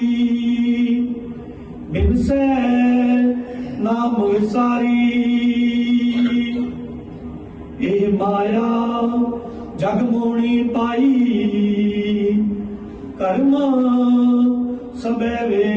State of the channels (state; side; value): identical; both; correlation 1.00